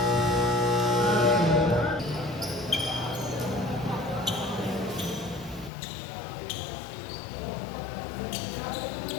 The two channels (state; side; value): drops out; right; at 5.7 s